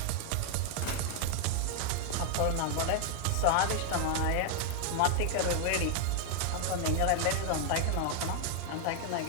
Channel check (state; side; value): different; both; correlation 0.00